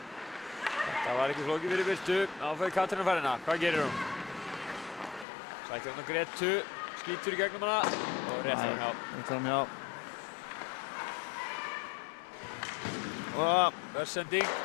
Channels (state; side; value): drops out; right; at 5.2 s